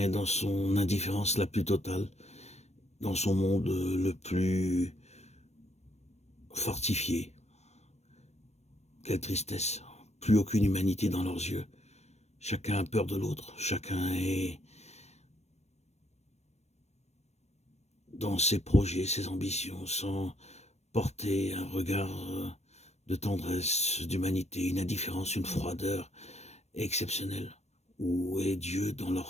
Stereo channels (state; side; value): late; right; 0.32 ms